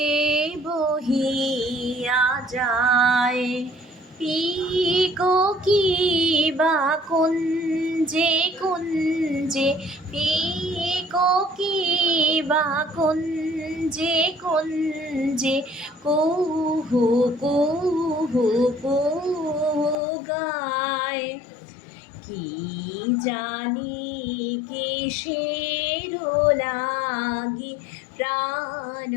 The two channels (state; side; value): drops out; right; at 20.0 s